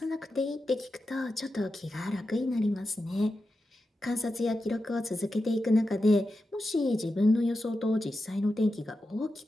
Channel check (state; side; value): normal; both; correlation 0.90